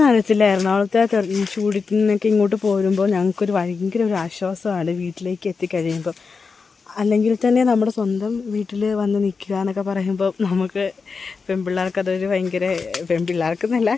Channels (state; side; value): quieter; right; 4.9 dB